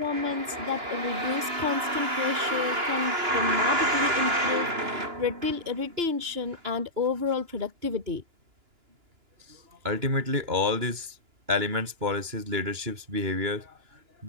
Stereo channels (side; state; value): left; late; 2.9 ms